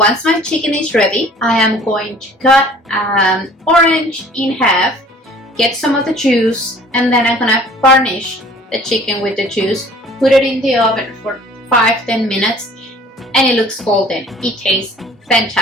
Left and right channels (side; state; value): both; normal; correlation 0.51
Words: my chicken is ready, I am going to cut an orange in half, get some of the juice, and then I'm gonna garnish the chicken with the juice, put it in the oven for 5-10 minutes, and it looks golden. It tastes